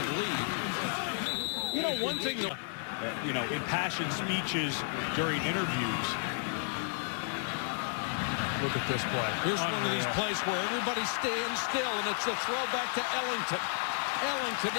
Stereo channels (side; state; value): right; silent; digital silence